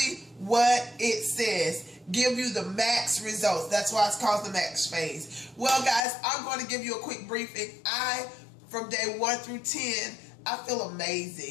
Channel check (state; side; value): drops out; right; at 6.0 s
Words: what it says. Give you the max results. That's why it's called the max phase. Well, guys, I'm going to give you a quick briefing. From day 1 through 10, I feel